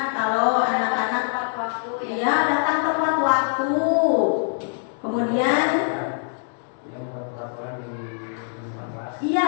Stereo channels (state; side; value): silent; right; digital silence